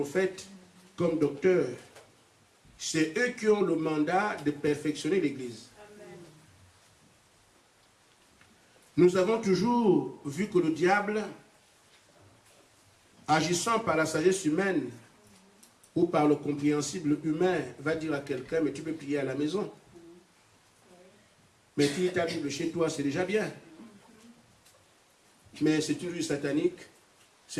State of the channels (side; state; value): both; identical; correlation 1.00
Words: comme docteurs. C'est eux qui ont le mandat de perfectionner l'Église. Nous avons toujours vu que le diable, agissant par la sagesse humaine ou par le compréhensible humain, va dire à quelqu'un, mais tu peux prier à la maison. Mais tu lis ta Bible chez toi, c'est déjà bien. Mais c'est une vue satanique, ce